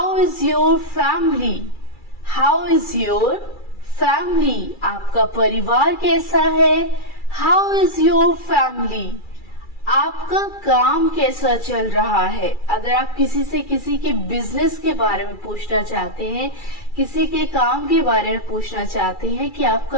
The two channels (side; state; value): right; late; 2.3 ms